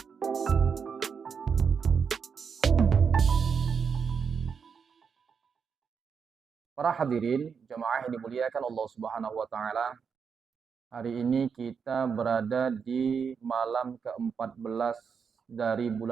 Para hadirin, jemaah yang dimuliakan Allah Subhanahu wa taala. Hari ini kita berada di malam ke-14 dari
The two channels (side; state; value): left; quieter; 6.3 dB